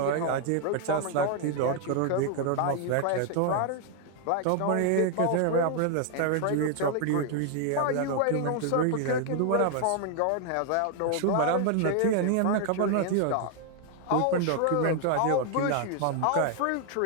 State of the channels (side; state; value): both; different; correlation 0.00